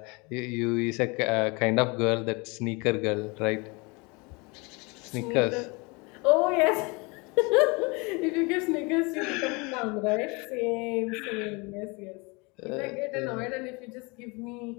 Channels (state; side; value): quieter; right; 28.1 dB